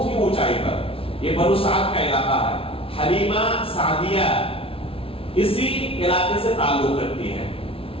ہی اونچائی پر. یہ بنو سعد کا علاقہ ہے. حلیمہ سعدیہ اسی علاقے سے تعلق رکھتی ہے,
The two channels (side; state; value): right; late; 0.26 ms